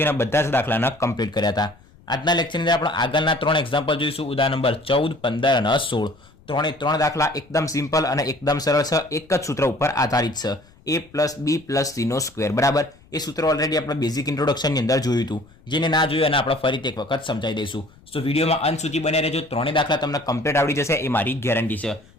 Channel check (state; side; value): noise; left; rumble, 27 dB below the sound